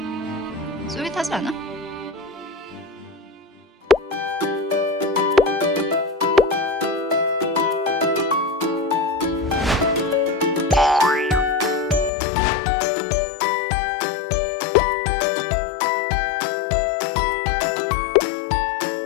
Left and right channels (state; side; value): drops out; right; at 12.1 s